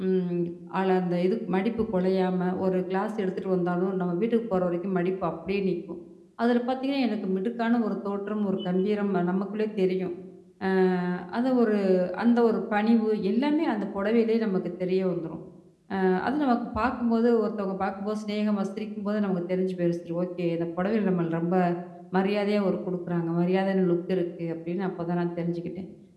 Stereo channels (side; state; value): both; identical; correlation 1.00